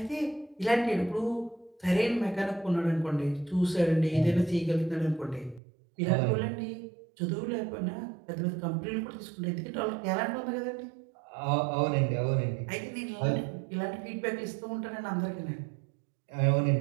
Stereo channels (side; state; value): left; drops out; at 5.6 s